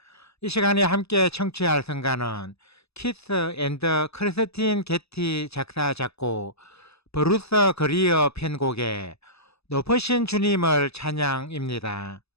이 시간에 함께 청취할 성가는 키스 앤드 크리스틴 게티 작사 작곡 브루스 그리어 편곡의 높으신 주님을 찬양입니다.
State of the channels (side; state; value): right; late; 0.79 ms